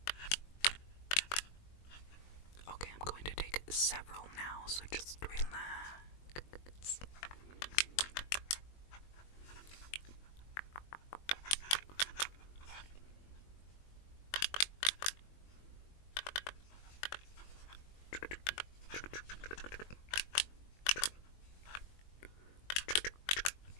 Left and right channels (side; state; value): right; late; 21 ms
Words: Okay, I'm going to take several now, so just relax.